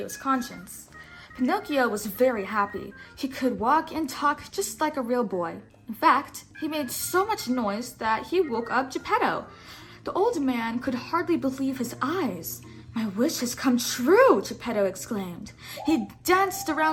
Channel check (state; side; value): identical; both; correlation 1.00